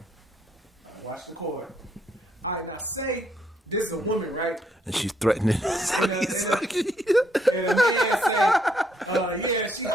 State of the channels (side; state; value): both; normal; correlation 0.72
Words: Watch the cord. All right, now say this is a woman, right? And she's threatening And sucky sucky. and a man say, yeah, she